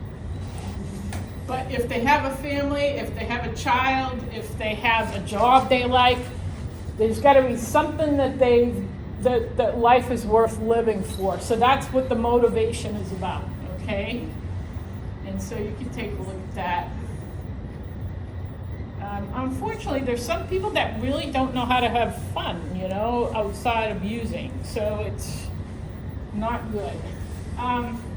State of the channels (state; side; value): identical; both; correlation 1.00